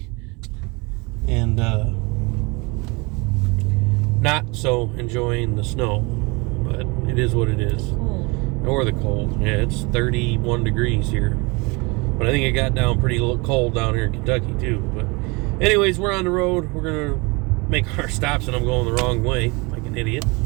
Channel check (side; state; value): left; quieter; 27.4 dB